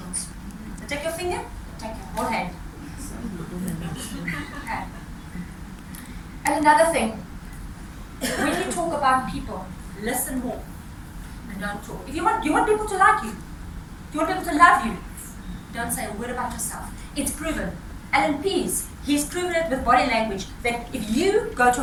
They'll take your finger, take your whole hand. Okay. And another thing, when you talk about people, listen more and don't talk. If you want people to like you, if you want people to love you, don't say a word about yourself. It's proven. Alan Pease, he's proven it with body language, that if you go to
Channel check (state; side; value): identical; both; correlation 1.00